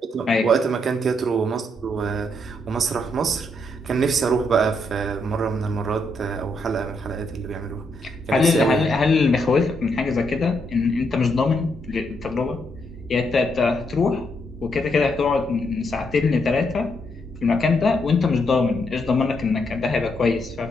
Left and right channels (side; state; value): both; normal; correlation 0.77